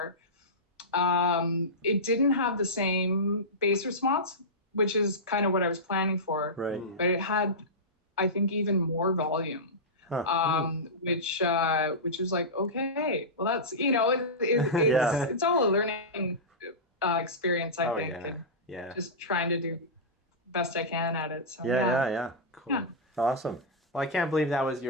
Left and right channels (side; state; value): both; normal; correlation -0.14